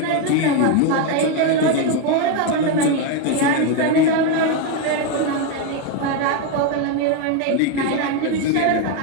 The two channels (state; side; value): different; both; correlation 0.02